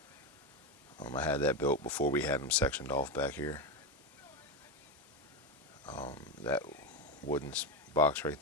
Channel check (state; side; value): normal; both; correlation 0.13